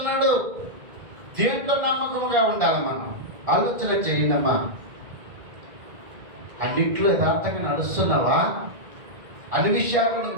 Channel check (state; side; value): late; left; 1.9 ms